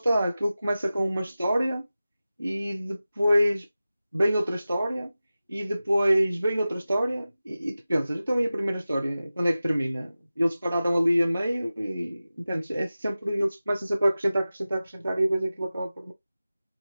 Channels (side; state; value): both; inverted; correlation -0.96